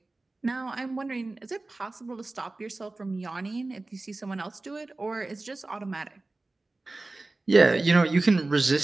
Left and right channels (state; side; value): quieter; left; 3.1 dB